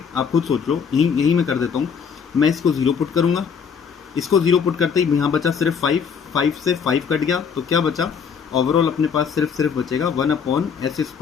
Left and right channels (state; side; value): quieter; right; 6.6 dB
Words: आप खुद सोच लो, यही मैं कर देता हूँ, मैं इसको 0 पुट करूंगा, इसको 0 पुट करते ही यहाँ बचा सिर्फ 5 से 5 कट गया, तो क्या बचा ओवरऑल अपने पास सिर्फ बचेगा